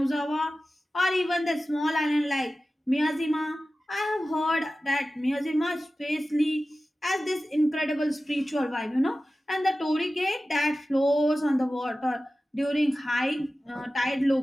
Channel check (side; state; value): both; normal; correlation 0.95